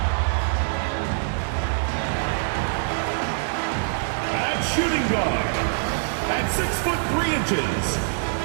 At shooting guard, at 6'3",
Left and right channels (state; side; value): silent; left; digital silence